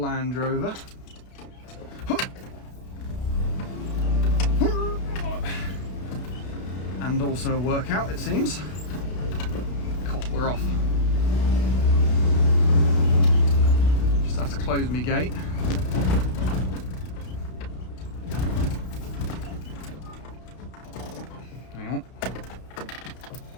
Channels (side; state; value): right; late; 32 ms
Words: Rover. And also a workout, it seems. Cool, we're off. Just have to close my gate. Hang on.